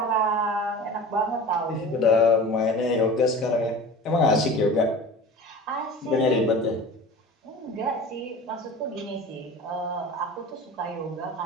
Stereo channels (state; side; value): normal; both; correlation 0.37